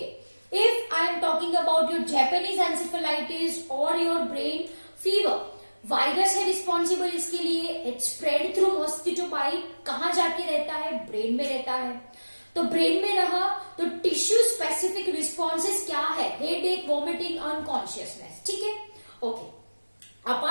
if I am talking about your Japanese encephalitis और योर ब्रेन फीवर, वायरस है रिस्पॉन्सिबल इसके लिए। It spread through mosquito bite. कहां जाके रहता है? ब्रेन में रहता है। तो ब्रेन में रहा तो टिश्यू स्पेसिफिक रिस्पॉन्सेस क्या है? हेडेक, वॉमिटिंग, अनकॉन्शियसनेस, ठीक है? Okay,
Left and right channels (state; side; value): inverted; both; correlation -1.00